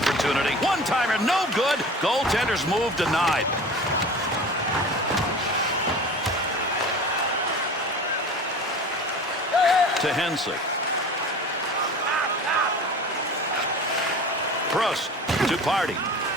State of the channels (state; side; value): normal; both; correlation 0.38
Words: One-timer, no good. Goaltender's move denied. To Henson. Prost to Party.